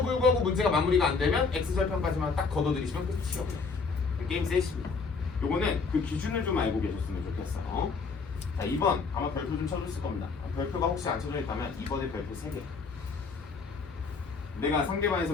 불구하고 문제가 마무리가 안 되면 X절편까지만 딱 걷어들이시면 끝이에요. 게임 셋입니다. 요거는 그 기준을 좀 알고 계셨으면 좋겠어. 자, 2번 아마 별표 좀 쳐줬을 겁니다. 별표가 혹시 안 쳐져 있다면 2번에 별표 3개. 내가 상대방에서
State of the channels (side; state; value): right; quieter; 4.7 dB